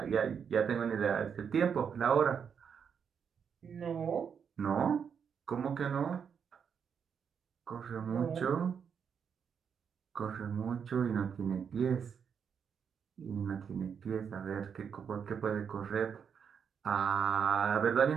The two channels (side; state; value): left; quieter; 7.1 dB